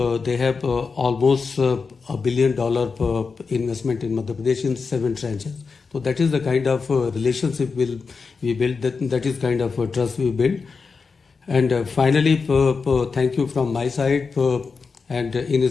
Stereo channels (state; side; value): quieter; right; 4.9 dB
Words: they have almost $1 billion investment in Madhya Pradesh in 7 tranches. So that is the kind of relationship we build. That is kind of trust we build. And finally, thank you from my side. And in